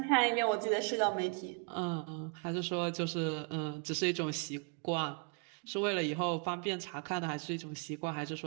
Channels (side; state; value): left; quieter; 34.7 dB